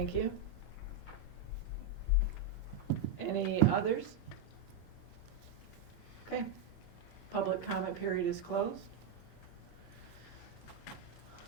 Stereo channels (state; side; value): quieter; left; 4.2 dB